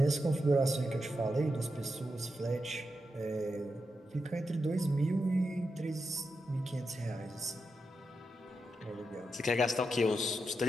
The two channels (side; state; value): both; normal; correlation 0.87